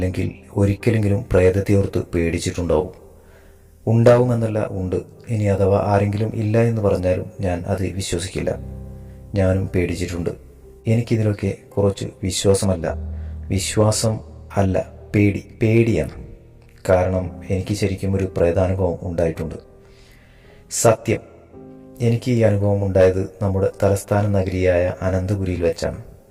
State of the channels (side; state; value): both; identical; correlation 1.00